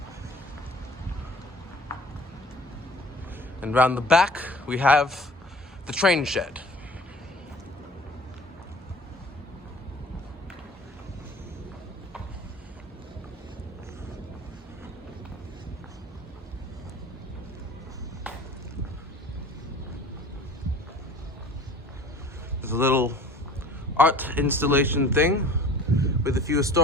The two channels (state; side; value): normal; both; correlation 0.45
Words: And round the back, we have the train shed. There's a little art installation thing with a few